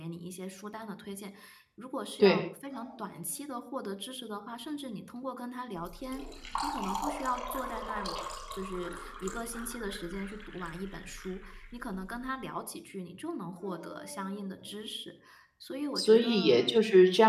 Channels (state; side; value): identical; both; correlation 1.00